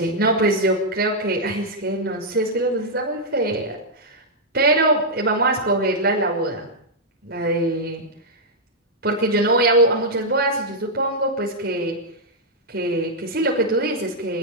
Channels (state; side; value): normal; both; correlation -0.06